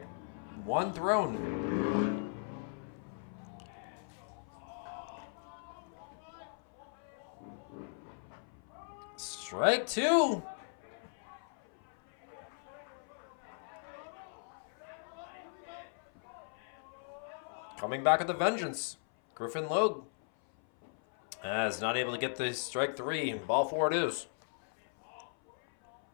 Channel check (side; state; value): right; silent; 53 dB below the other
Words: one thrown. Strike two. Coming back with a vengeance. Griffin Logue is not able to get the strike three. Ball four it is.